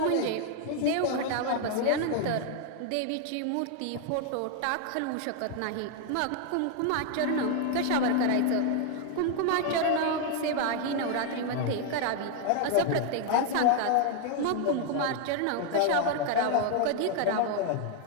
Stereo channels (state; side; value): different; both; correlation 0.00